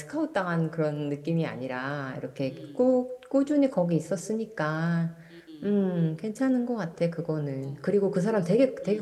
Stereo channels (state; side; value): identical; both; correlation 1.00